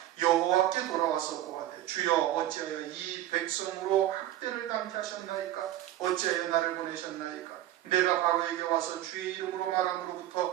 여호와께 돌아와서 고하되 주여 어찌하여 이 백성으로 학대를 당케 하셨나이까? 어찌하여 나를 보내셨나이까? 내가 바로에게 와서 주의 이름으로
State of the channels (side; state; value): left; quieter; 13.4 dB